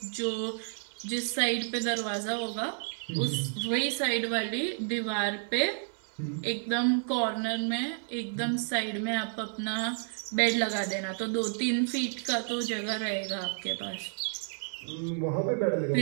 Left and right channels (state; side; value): silent; left; 57 dB below the other